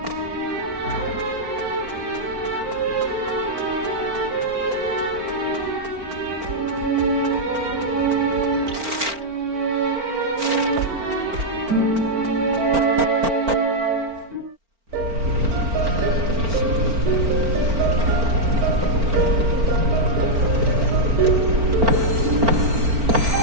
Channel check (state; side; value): late; left; 4.4 ms